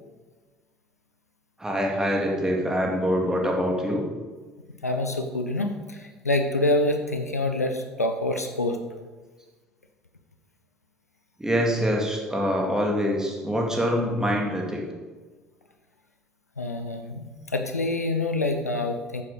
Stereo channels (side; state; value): both; normal; correlation 0.33